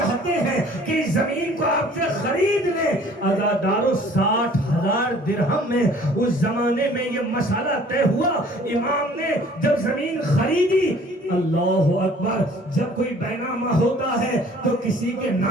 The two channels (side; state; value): both; normal; correlation 0.53